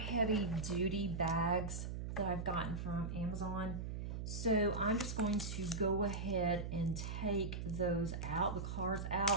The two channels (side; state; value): right; noise; hum, 4 dB below the sound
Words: duty bags that I've gotten from Amazon. So I'm just going to go ahead and take those out, the cards